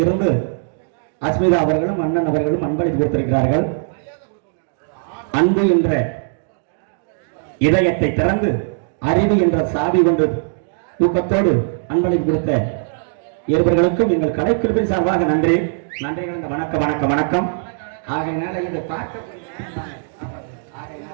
இருந்து அஸ்மிதா அவர்களும் அண்ணன் அவர்களும் அன்பளிப்பு கொடுத்திருக்கிறார்கள். அன்பு என்ற இதயத்தை திறந்து அறிவு என்ற சாவி கொண்டு தூக்கத்தோடு அன்பளிப்பு கொடுத்த இருவர்களுக்கும் எங்கள் கலைக்குழுவின் சார்பாக நன்றி நன்றி கலந்த வணக்கம் வணக்கம் வணக்கம். ஆகையினால இதை பார்க்க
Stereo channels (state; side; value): silent; left; digital silence